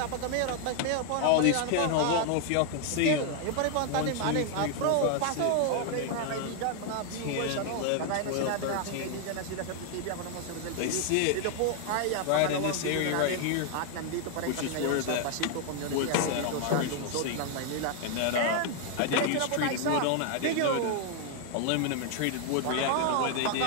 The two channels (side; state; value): both; different; correlation 0.00